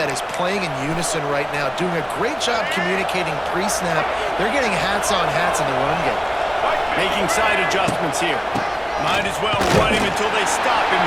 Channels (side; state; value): both; identical; correlation 1.00